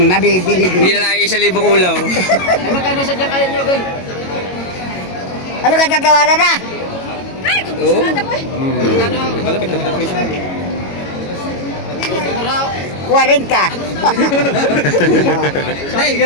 nabibili din. Hindi na lang 1,000 ulaw. Magkano sa dyan kaya nyo, guys? Ano ka tatawaran na? Oo. Malapit-lapit ang presyo. 40.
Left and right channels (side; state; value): right; late; 22 ms